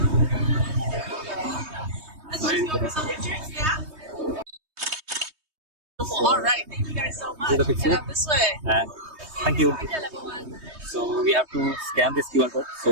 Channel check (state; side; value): late; left; 3.2 ms